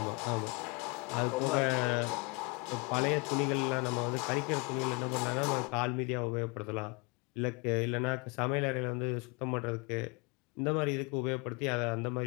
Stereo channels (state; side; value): quieter; right; 30.3 dB